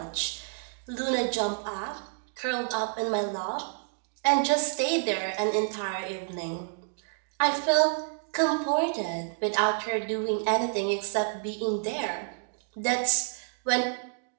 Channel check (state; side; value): silent; left; digital silence